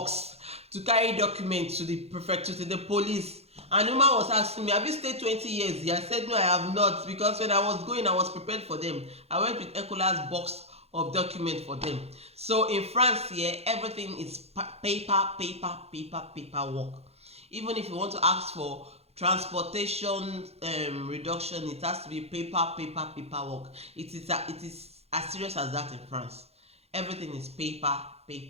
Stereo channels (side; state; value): left; late; 0.30 ms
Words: to carry documents to the prefecture, to the police. And the woman was asking me, have you stayed 20 years here? I said, no, I have not, because when I was going, I was prepared for them. I went with Ecola's box of documents for them. So in France here, everything is paper work. Even if you want to ask for transportation reduction, it has to be paper work. It is as serious as that in France. Everything is paper.